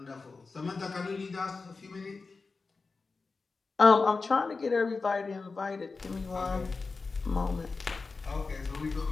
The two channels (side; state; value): right; quieter; 4.2 dB